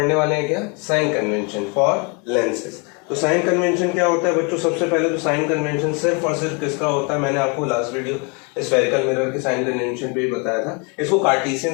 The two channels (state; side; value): quieter; right; 33.1 dB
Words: वाले हैं क्या? Sign convention for lenses. तो साइन कन्वेंशन क्या होता है बच्चों? सबसे पहले तो साइन कन्वेंशन सिर्फ और सिर्फ किसका होता है? मैंने आपको लास्ट वीडियो स्फेरिकल मिरर के साइन कन्वेंशन पे ही बताया था। इसको